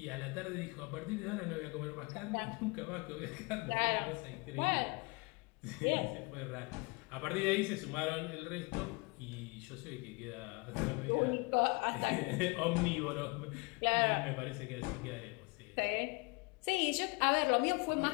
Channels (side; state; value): right; quieter; 28.4 dB